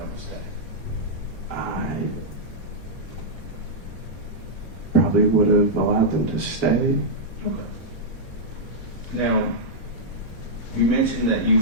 to stay? I probably would have allowed them to stay. Okay. Now, you mentioned that you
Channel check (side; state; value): both; normal; correlation -0.08